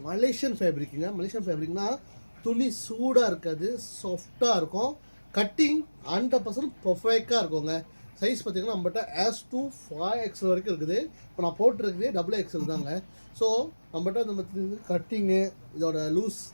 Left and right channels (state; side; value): inverted; both; correlation -1.00